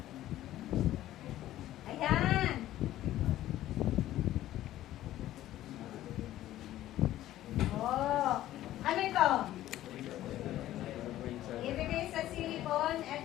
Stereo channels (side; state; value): right; quieter; 13.9 dB